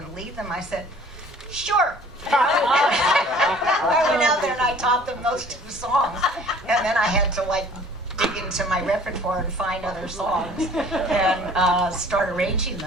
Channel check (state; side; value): normal; both; correlation 0.51